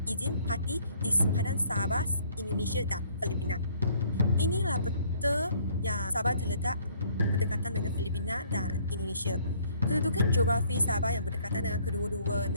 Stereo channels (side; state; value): both; inverted; correlation -0.61